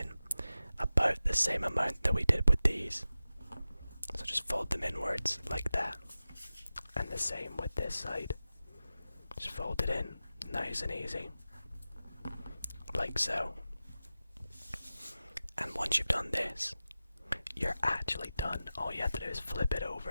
about the same amount that we did with these. So just fold them inwards like that. And the same with this side. Just fold it in, nice and easy, like so. And once you've done this, you're actually done. All you have to do is flip it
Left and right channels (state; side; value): inverted; both; correlation -0.94